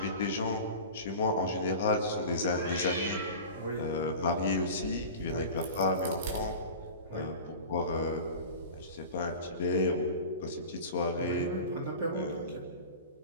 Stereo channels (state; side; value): inverted; both; correlation -0.34